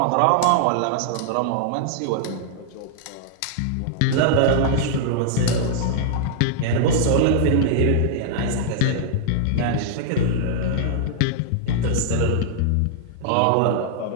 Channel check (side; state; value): both; different; correlation -0.01